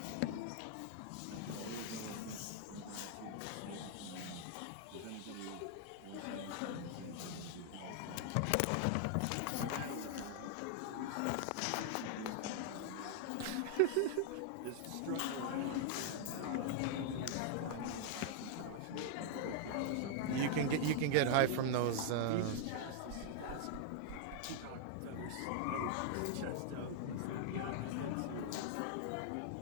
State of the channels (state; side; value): different; both; correlation 0.00